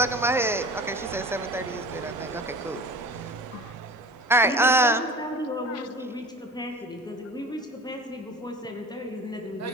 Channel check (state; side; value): normal; both; correlation 0.39